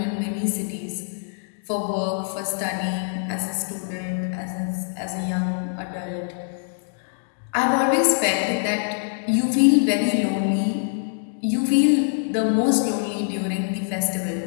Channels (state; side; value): silent; right; digital silence